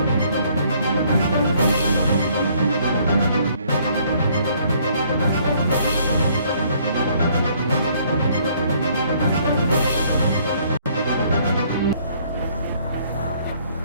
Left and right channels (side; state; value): both; inverted; correlation -0.63